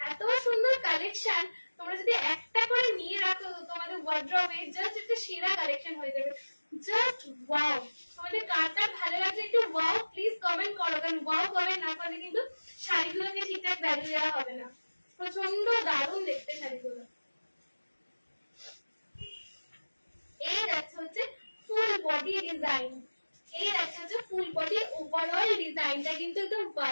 এত সুন্দর কালেকশন, তোমরা যদি একটা করে নিয়ে রাখো তোমাদের ওয়ার্ড্রপে, জাস্ট একটা সেরা কালেকশন হয়ে যাবে। জাস্ট ওয়াও, তোমাদের কারটা ভালো লাগছে একটু ওয়াও প্লিজ কমেন্ট করো, কারণ ওয়াও কমেন্ট না করলে কিন্তু শাড়িগুলোকে ঠিকঠাক ভ্যালু দেওয়া হবে না। প্রচন্ড দারুণ দেখতে শাড়িগুলো। এই যাচ্ছে হচ্ছে ফুল বডি ডিজাইন, এই যাচ্ছে হচ্ছে ফুল বডি ওভারঅল ডিজাইনটা কিন্তু একদম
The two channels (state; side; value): inverted; both; correlation -1.00